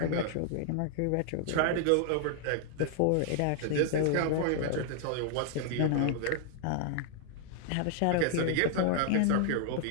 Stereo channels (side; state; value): both; different; correlation 0.00